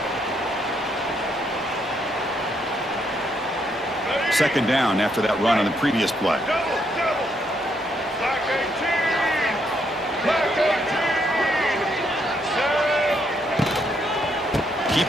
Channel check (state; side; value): normal; both; correlation 0.74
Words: Second down after that run on the previous play. Double, double. Black 18. Black 18. Set.